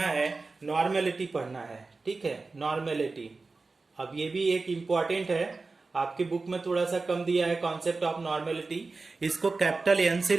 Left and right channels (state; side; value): quieter; left; 3.8 dB